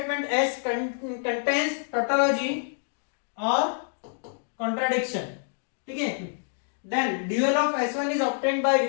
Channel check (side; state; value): right; silent; digital silence